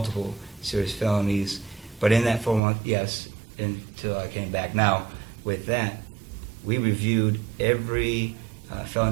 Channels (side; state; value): left; drops out; at 2.6 s